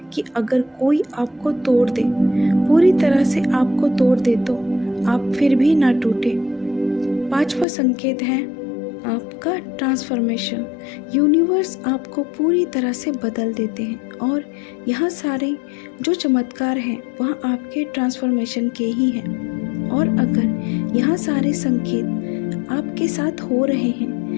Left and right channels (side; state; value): right; drops out; at 7.7 s